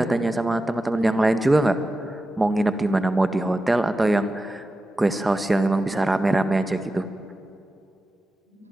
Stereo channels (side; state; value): both; normal; correlation 0.92